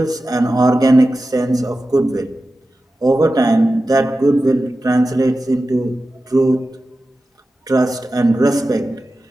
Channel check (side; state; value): both; normal; correlation 0.93